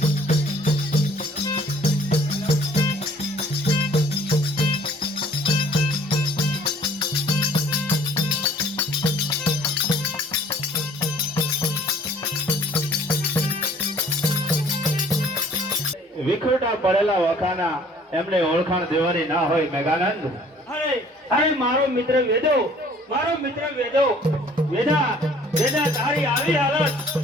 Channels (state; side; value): normal; both; correlation 0.55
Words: વિખૂટા પડેલા વખાના એમને ઓળખાણ દેવાની ના હોય મેઘાનંદ. અરે અરે મારો મિત્ર વેદો, મારો મિત્ર વેદો, વેદા વેદા તારી આવી હાલત.